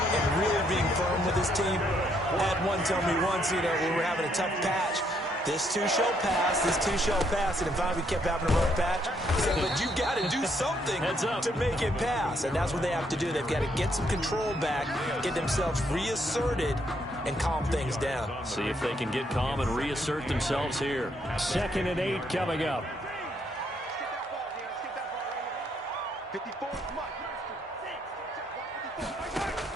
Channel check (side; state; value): both; normal; correlation 0.72